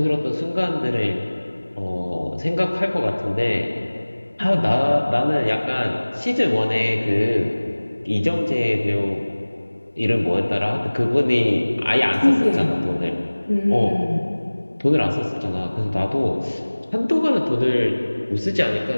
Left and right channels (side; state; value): both; inverted; correlation -1.00